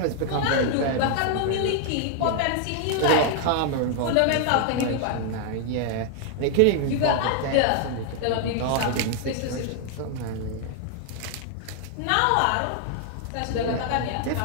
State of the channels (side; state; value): both; different; correlation 0.00